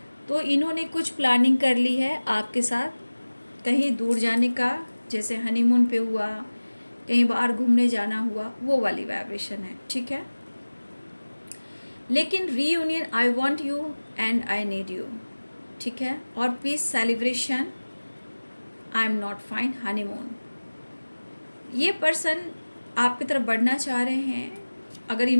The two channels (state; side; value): inverted; both; correlation -1.00